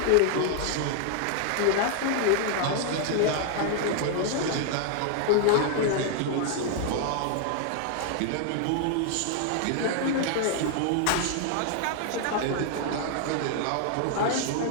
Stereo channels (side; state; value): both; different; correlation 0.00